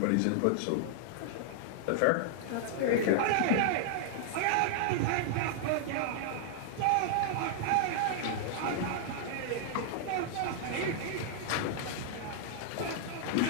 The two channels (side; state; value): both; different; correlation -0.01